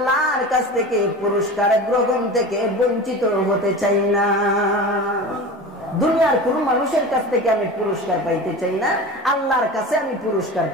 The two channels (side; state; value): both; normal; correlation 0.32